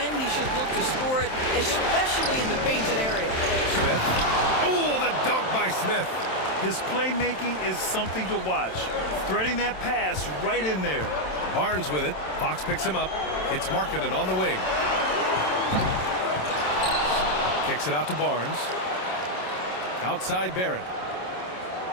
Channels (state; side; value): late; right; 27 ms